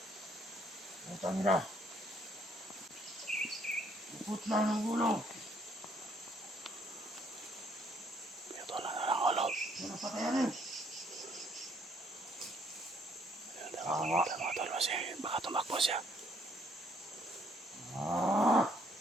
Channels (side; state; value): both; normal; correlation 0.67